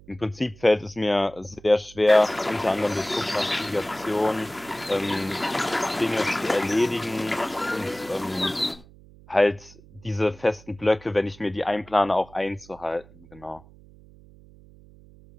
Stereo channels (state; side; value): noise; right; hum, 23 dB below the sound